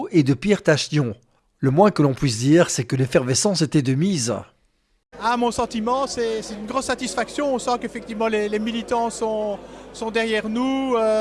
et de Pierre Tachnion. Le moins que l'on puisse dire, c'est que l'effervescence était de mise. Mon sentiment, c'est une grosse satisfaction. On sent qu'effectivement les militants sont derrière nous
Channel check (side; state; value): both; identical; correlation 1.00